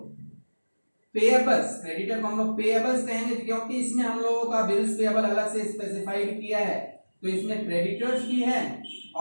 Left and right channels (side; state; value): both; inverted; correlation -1.00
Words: पेएबल्स, क्रेडिटर को हम लोग पेएबल्स कहेंगे क्योंकि इसमें हम लोगों का बिल्स पेएबल अलग से स्पेसिफाइड किया है। तो इसमें क्रेडिटर्स भी है